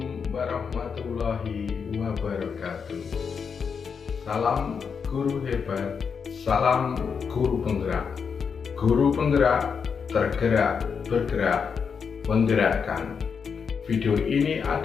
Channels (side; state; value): right; quieter; 6.2 dB